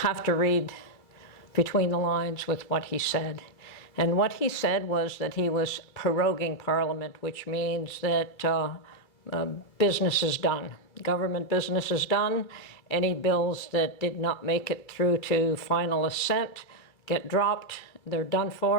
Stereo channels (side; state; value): right; late; 2.3 ms